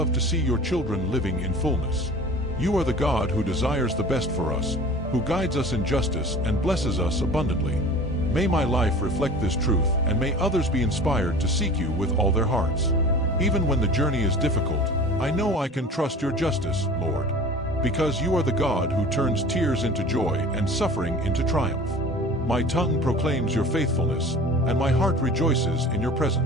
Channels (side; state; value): both; normal; correlation 0.41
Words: to see your children living in fullness. You are the God who desires the best for us, who guides us in justice and blesses us abundantly. May my life reflect this truth, and may others be inspired to seek you with all their hearts. Even when the journey is difficult, I know I can trust your justice, Lord. Because you are the God who turns tears into joy and suffering into triumph. My tongue proclaims your faithfulness, and my heart rejoices in your